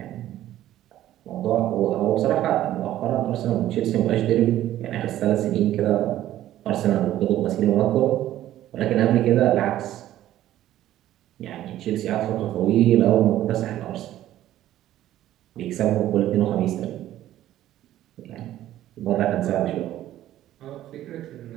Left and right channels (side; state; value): left; quieter; 13.3 dB